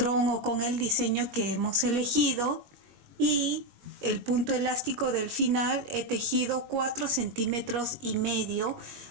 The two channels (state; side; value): late; left; 21 ms